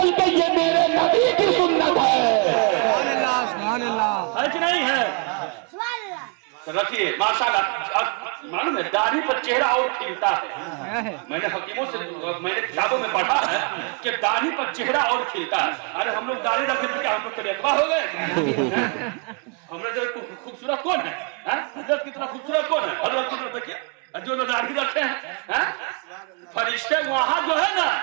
یہ میرے نبی کی سنت ہے. سبحان اللہ, ہے کہ نہیں ہے؟ رکھیے ماشاءاللہ. معلوم ہے داڑھی پر چہرہ اور کھلتا ہے. میں نے حکیموں سے, میں نے کتابوں میں پڑھا ہے کہ داڑھی پر چہرہ اور کھلتا ہے. ارے ہم لوگ داڑھی رکھتے تھے, ہم لوگ تریکوا ہو گئے. ہم نے خوبصورت کون ہے؟ حضرت کی طرح خوبصورت کون ہے؟ حضرت کی طرح دیکھیے جو داڑھی رکھتے ہیں. फरिश्ते वहां जो है ना,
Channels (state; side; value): quieter; left; 34.6 dB